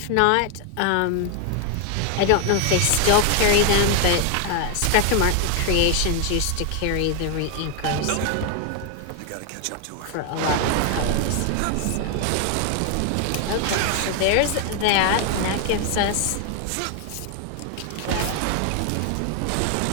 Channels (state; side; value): different; both; correlation 0.00